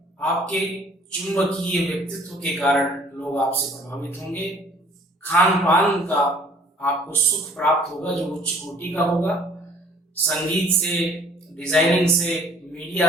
आपके चुंबकीय व्यक्तित्व के कारण लोग आपसे प्रभावित होंगे। खान पान का आपको सुख प्राप्त होगा जो उच्च कोटि का होगा। संगीत से, डिजाइनिंग से,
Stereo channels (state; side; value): normal; both; correlation 0.55